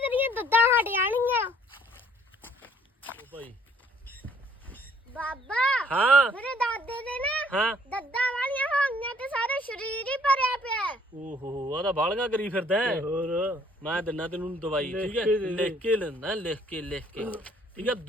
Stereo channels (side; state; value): both; normal; correlation 0.62